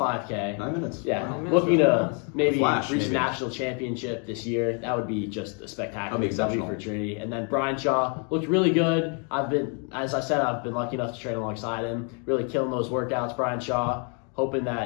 5K. 9 minutes. Yeah, 9 minutes looking for to miles. maybe Flash, reach maybe. the national championship this year. That would be just a spectacular That'd be W exceptional. for Trinity. And then Brian Shaw looked really good. As I said, I've been lucky enough to train alongside him, really killing those workouts. Brian Shaw, hoping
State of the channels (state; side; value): quieter; right; 38.5 dB